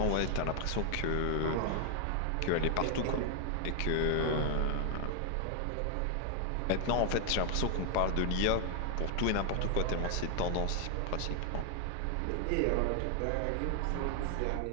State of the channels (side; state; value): both; different; correlation 0.00